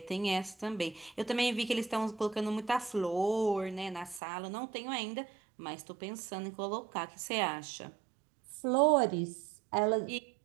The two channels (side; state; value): left; drops out; at 4.2 s